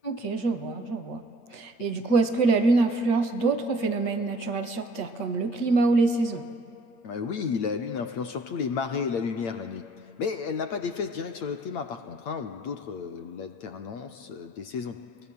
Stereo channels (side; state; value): right; late; 8.7 ms